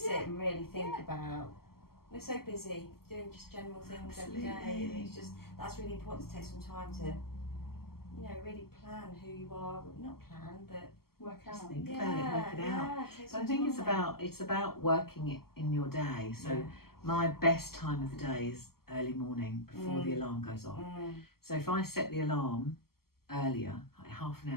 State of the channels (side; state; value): right; late; 0.94 ms